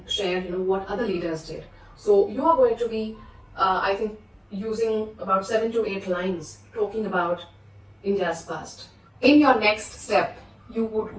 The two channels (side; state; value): both; identical; correlation 1.00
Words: share, what other leaders did. So you are going to be, I think, using about 7 to 8 lines talking about India's past. In your next step, you would